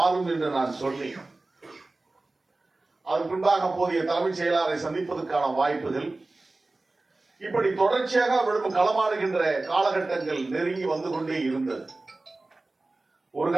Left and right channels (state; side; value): quieter; left; 3.1 dB